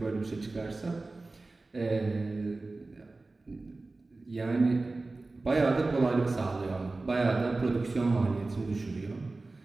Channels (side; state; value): left; quieter; 3.3 dB